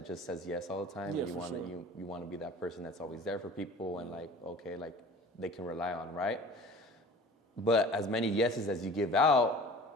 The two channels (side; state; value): both; normal; correlation 0.43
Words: just says yes all the time, and you want to be that person that's always there for people and like, okay, like they can rely on, right? But as many yeses as you give out,